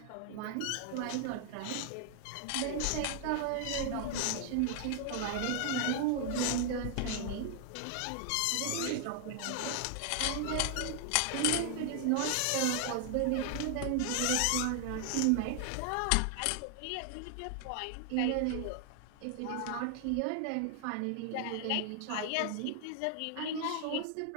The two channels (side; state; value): both; different; correlation 0.00